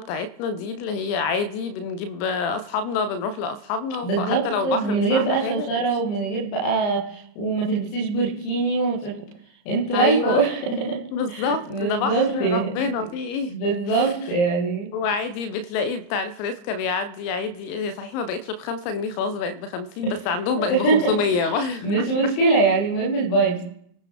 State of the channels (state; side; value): late; right; 34 ms